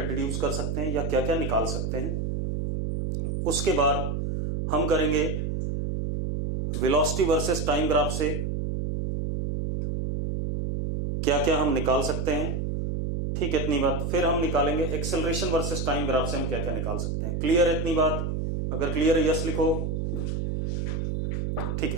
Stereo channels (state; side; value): noise; right; hum, 1 dB below the sound